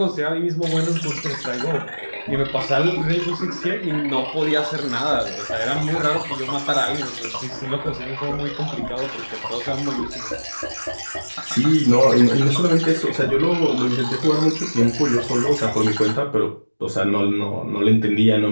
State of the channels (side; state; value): both; inverted; correlation -1.00